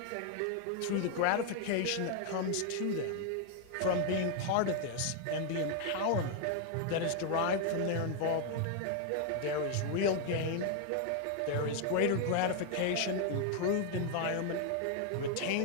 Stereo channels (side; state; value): both; different; correlation 0.00